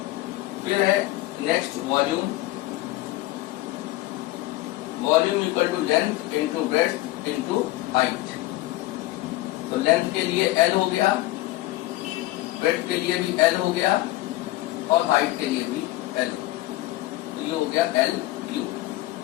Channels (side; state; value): right; quieter; 17.9 dB